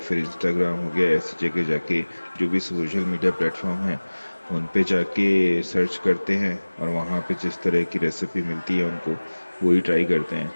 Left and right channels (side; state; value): both; inverted; correlation -1.00